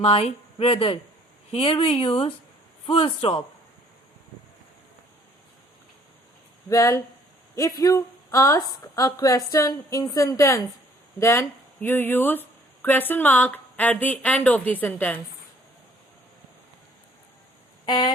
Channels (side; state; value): both; normal; correlation 0.59